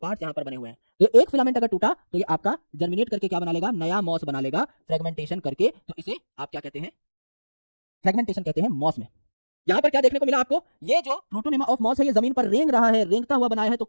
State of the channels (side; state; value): both; inverted; correlation -1.00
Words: यहां पर बने हुए हैं। तो एक फिलामेंट अगर टूटा तो ये आपका जर्मिनेट करके क्या बना लेगा, नया मॉस बना लेगा फ्रेगमेंटेशन करके। तो इसे आप क्या कहते हैं, फ्रेगमेंटेशन कहते हैं मॉस में। यहां पर क्या देखने को मिला आपको, ये जो प्रोटोनेमा ऑफ मॉस है ये जमीन पर रेंग रहा है, रेंगता हुआ बनाया है तो